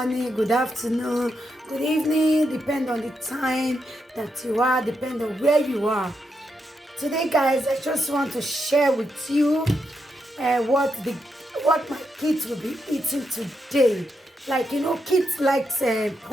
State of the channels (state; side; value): normal; both; correlation 0.83